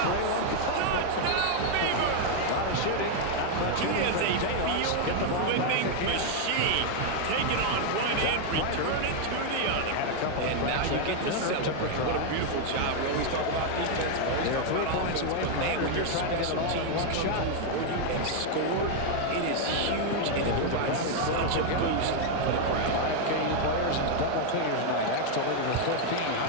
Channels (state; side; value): different; both; correlation 0.00